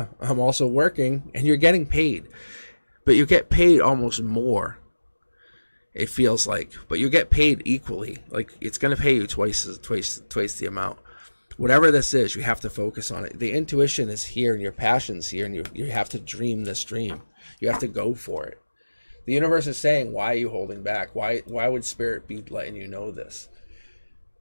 I'm also working, and you're getting paid. But you get paid almost more, it feels like. But you get paid equally. Like, it's going to pay you twice the amount. Whatever this is, you have to focus on it. The intuition is here, and your passion's here, and you have to dream this dream. You have to go for it. The universe is saying, why are you holding back? Why would Spirit be letting you know this?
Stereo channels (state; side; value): inverted; both; correlation -1.00